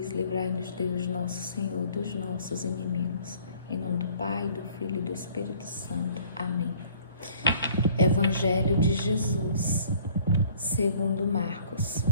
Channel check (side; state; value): both; inverted; correlation -0.57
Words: livrai-nos Deus nosso Senhor dos nossos inimigos. Em nome do Pai, do Filho e do Espírito Santo. Amém. Evangelho de Jesus, segundo Marcos.